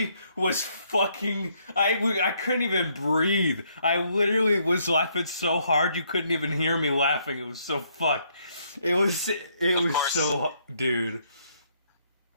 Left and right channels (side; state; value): both; inverted; correlation -0.71